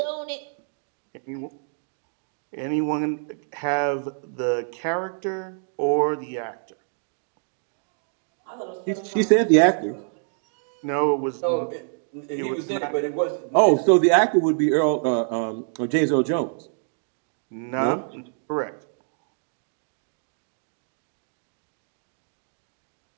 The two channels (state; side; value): silent; left; digital silence